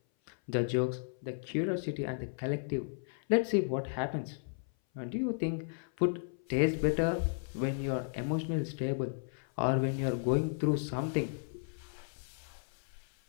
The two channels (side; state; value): right; silent; 55 dB below the other